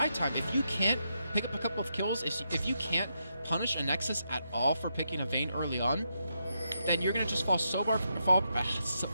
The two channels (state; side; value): inverted; both; correlation -0.82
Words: time. If you can't pick up a couple of kills, if you can't punish Anexis at all for picking a Vayne early on, then you're going to just fall so far